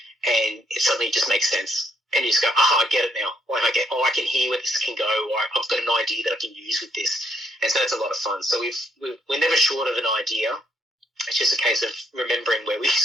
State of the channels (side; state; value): both; normal; correlation 0.72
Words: and it suddenly just makes sense. And you just go, I get it now. Like I can hear where this can go, or I've got an idea that I can use with this. And so that's a lot of fun. So we're never short of an idea. It's just a case of remembering where we